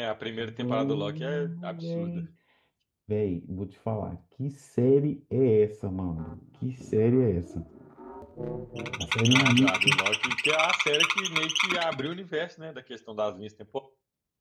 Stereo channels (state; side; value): identical; both; correlation 1.00